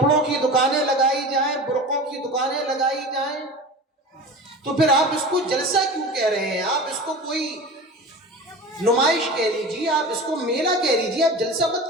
کی دکانیں لگائی جائیں، برقعوں کی دکانیں لگائی جائیں، تو پھر آپ اس کو جلسہ کیوں کہہ رہے ہیں؟ آپ اس کو کوئی نمائش کہہ لیجیے، آپ اس کو میلہ کہہ لیجیے، آپ جلسہ مت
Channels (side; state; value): both; normal; correlation 0.33